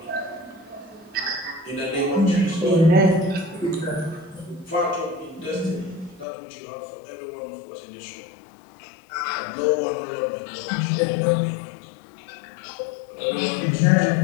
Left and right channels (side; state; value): right; drops out; at 6.2 s